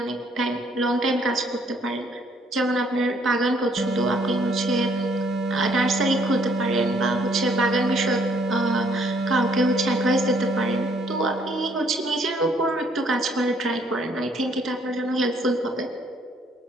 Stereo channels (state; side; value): normal; both; correlation 0.65